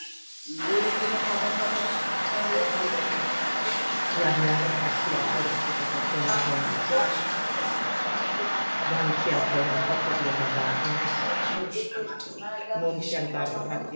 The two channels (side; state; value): both; inverted; correlation -1.00